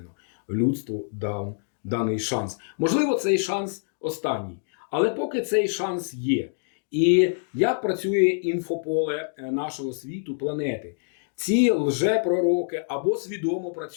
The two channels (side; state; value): right; silent; digital silence